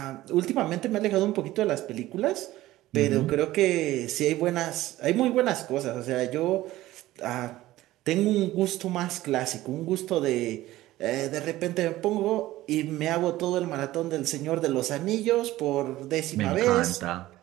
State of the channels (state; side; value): quieter; left; 16.2 dB